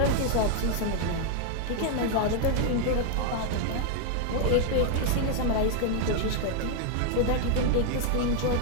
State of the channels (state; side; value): different; both; correlation 0.00